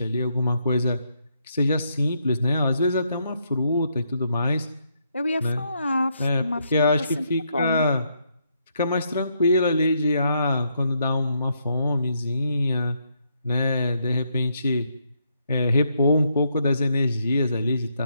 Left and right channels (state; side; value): inverted; both; correlation -0.76